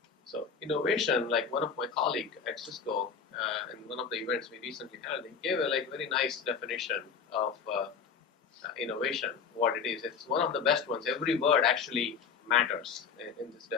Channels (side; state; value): right; quieter; 6.2 dB